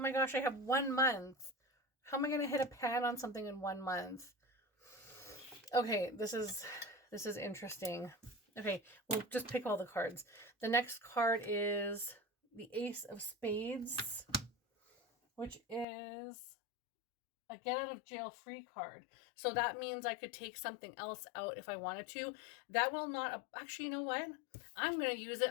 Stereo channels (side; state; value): right; drops out; at 15.9 s